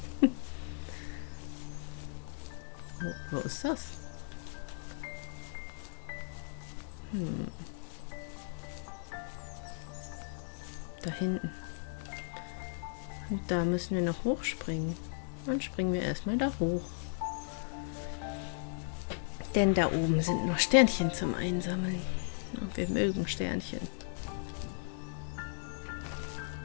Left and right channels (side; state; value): right; silent; 54 dB below the other